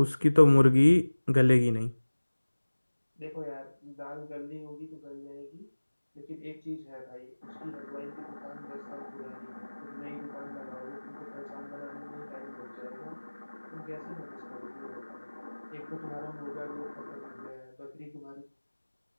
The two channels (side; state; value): both; inverted; correlation -1.00